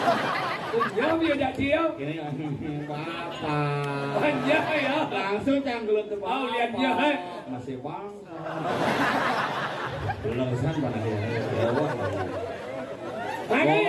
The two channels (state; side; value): identical; both; correlation 1.00